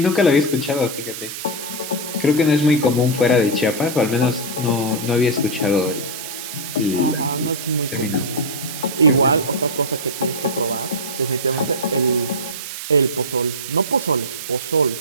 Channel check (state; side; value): noise; right; hiss, 8 dB below the sound